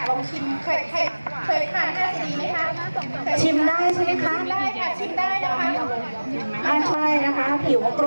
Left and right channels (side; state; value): both; inverted; correlation -1.00